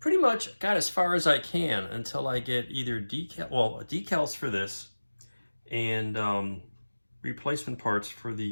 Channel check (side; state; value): both; inverted; correlation -1.00